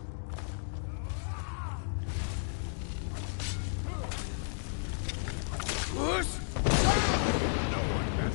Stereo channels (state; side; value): silent; right; digital silence